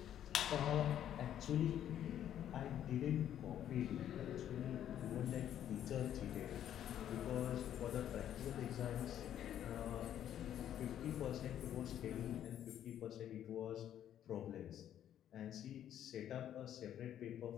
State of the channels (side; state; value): right; quieter; 10.7 dB